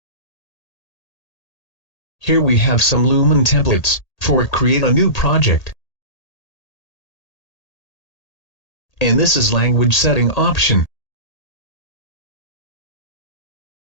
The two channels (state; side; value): late; right; 1.8 ms